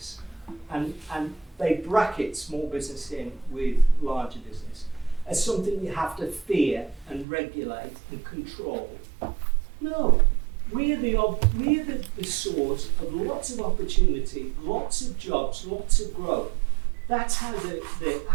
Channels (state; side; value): drops out; left; at 7.2 s